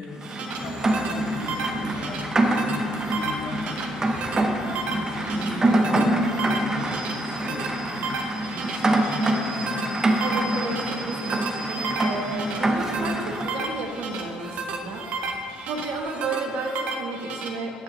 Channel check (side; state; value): both; normal; correlation 0.75